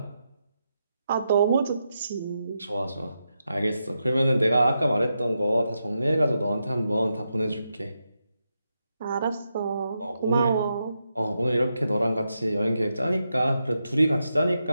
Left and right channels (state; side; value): inverted; both; correlation -0.85